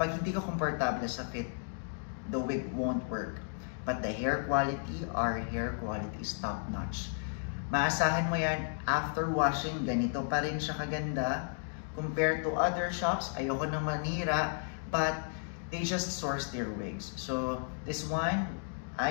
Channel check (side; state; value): right; silent; digital silence